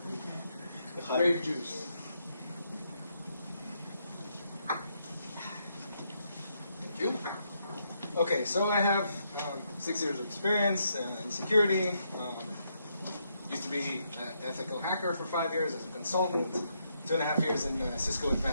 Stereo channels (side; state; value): both; inverted; correlation -0.77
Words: Grape juice. Thank you. Okay, so I have 6 years of experience in security. Used to be an ethical hacker for 5 years as a consultant. 2.5 years in Cisco